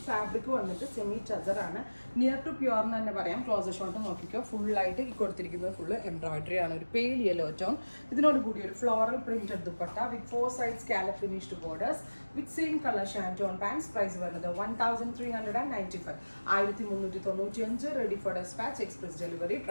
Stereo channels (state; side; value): inverted; both; correlation -1.00